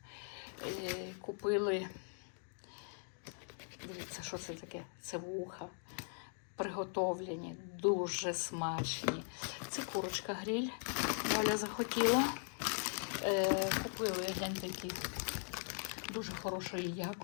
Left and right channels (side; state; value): right; silent; 51 dB below the other